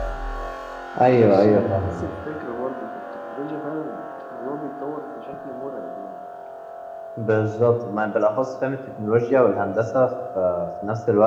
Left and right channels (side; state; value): both; identical; correlation 1.00